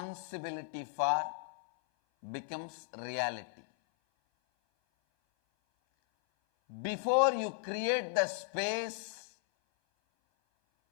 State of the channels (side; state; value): right; silent; 54 dB below the other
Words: for becomes reality. Before you create the space,